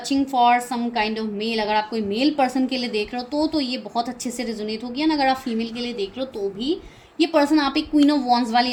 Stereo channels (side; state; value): both; identical; correlation 1.00